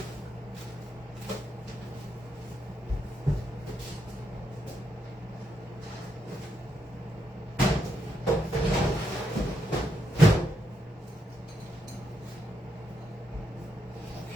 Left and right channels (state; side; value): normal; both; correlation 0.81